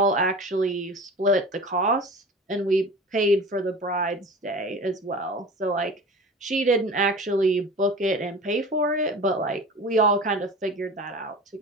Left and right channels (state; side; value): normal; both; correlation 0.36